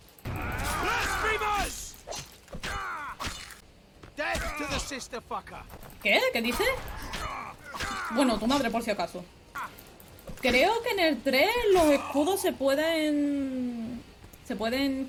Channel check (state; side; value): identical; both; correlation 1.00